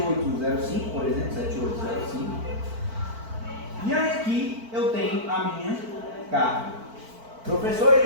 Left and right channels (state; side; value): late; left; 4.5 ms